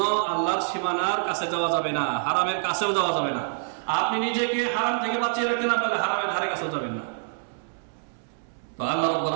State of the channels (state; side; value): silent; left; 61 dB below the other